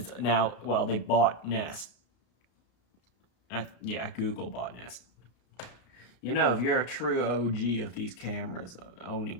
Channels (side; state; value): right; late; 33 ms